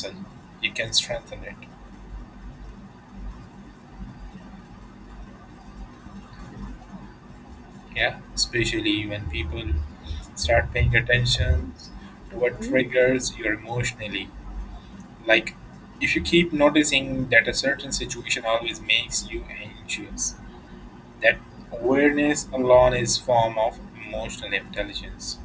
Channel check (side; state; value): both; identical; correlation 1.00